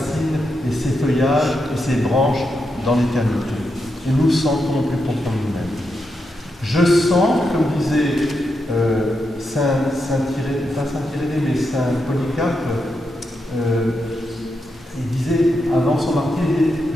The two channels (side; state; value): both; normal; correlation 0.85